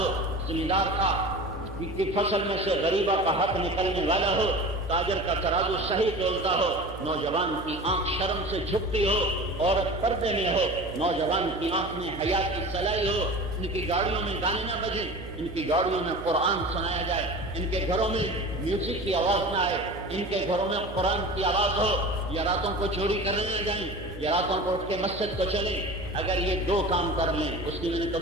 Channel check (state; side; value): noise; right; hum, 13 dB below the sound